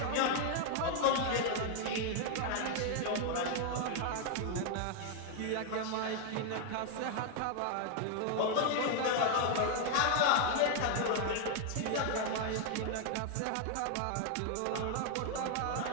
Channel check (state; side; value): different; both; correlation 0.00